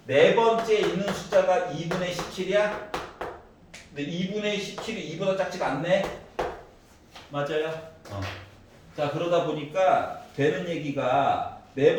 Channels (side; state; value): both; identical; correlation 1.00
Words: 네 번째 있는 숫자가 2분의 17이야? 근데 2분의 17이 2보다 작지가 않네? 맞아요? 자, 그러다 보니까 되는 얘기가 네